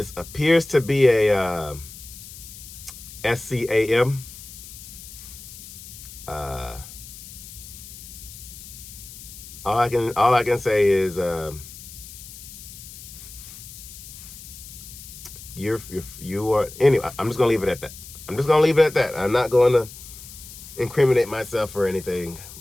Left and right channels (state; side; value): noise; left; hiss, 15 dB below the sound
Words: appears to be a SCAM. all I can say is you are anyway. I'm just gonna leave it at that. I'm not going to incriminate myself or anything,